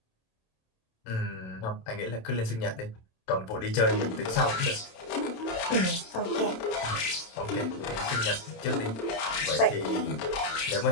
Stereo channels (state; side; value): late; right; 27 ms